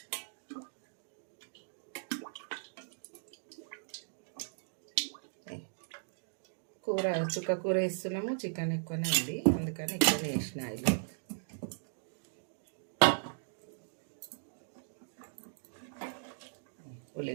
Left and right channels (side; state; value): left; silent; digital silence